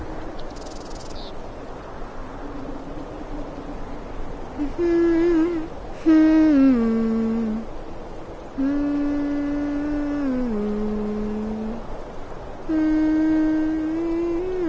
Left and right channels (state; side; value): identical; both; correlation 1.00